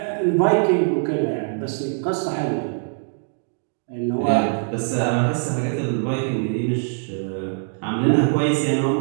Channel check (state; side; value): silent; left; digital silence